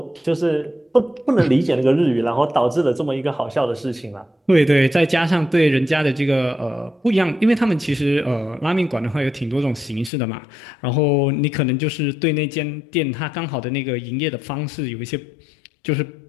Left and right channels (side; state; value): right; drops out; at 10.1 s